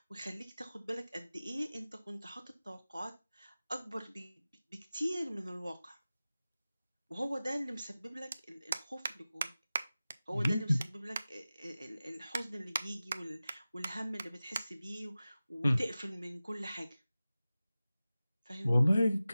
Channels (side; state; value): both; inverted; correlation -0.96